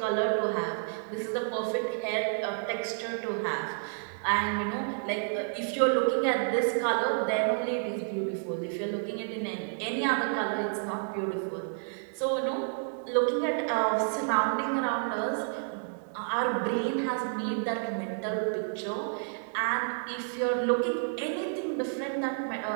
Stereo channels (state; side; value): silent; left; digital silence